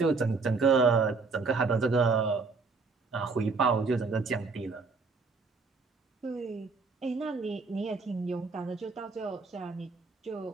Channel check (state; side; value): quieter; left; 4.3 dB